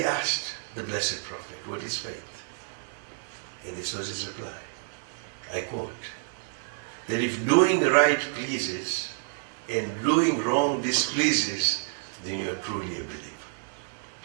asked the Blessed Prophet, what is faith? And this was his reply. I quote, that if doing right pleases and doing wrong displeases, then you are truly a believer.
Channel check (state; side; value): silent; left; 59 dB below the other